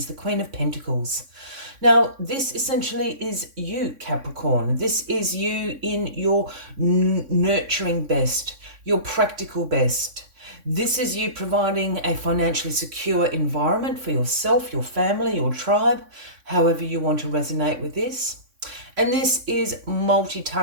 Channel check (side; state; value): left; late; 3.6 ms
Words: the Queen of Pentacles. Now, this essentially is you, Capricorn. This is you in your nurturing best, your practical best. This is you providing a financially secure environment for yourself, your family, your tribe, however you want to resonate with this. And this is